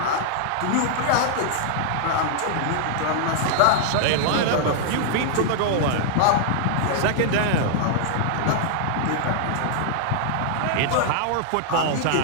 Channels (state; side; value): different; both; correlation -0.01